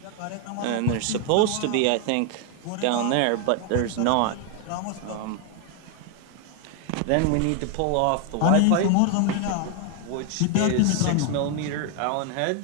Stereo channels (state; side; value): different; both; correlation 0.01